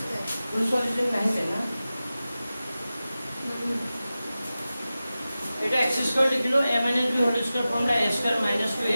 ফুল সলিউশন নাহিবে না এটা এক্স স্কোৱাৰ লিখিলো a minus b whole square formula a square minus 2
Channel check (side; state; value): both; inverted; correlation -0.95